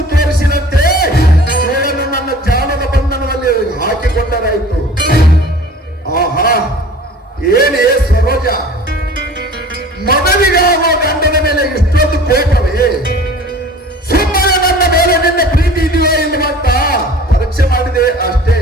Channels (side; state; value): both; normal; correlation 0.45